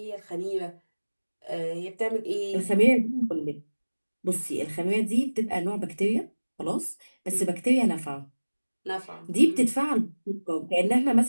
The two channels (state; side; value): inverted; both; correlation -1.00